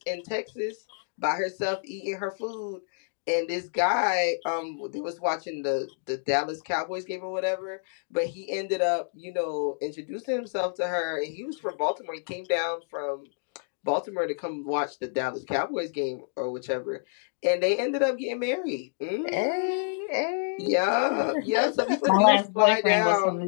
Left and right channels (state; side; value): silent; right; digital silence